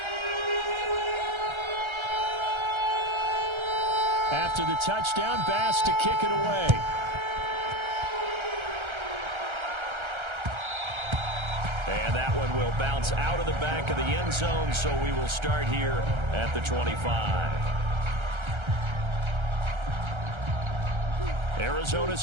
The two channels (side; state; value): left; late; 1.3 ms